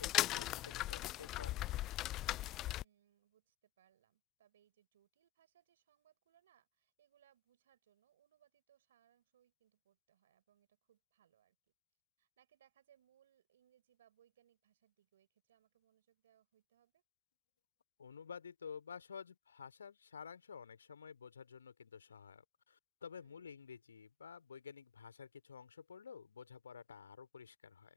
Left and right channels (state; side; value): quieter; right; 12.8 dB